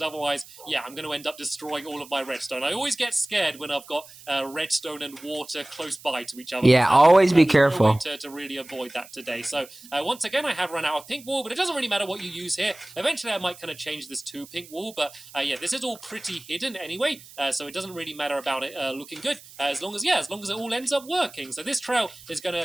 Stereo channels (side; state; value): right; noise; hiss, 20 dB below the sound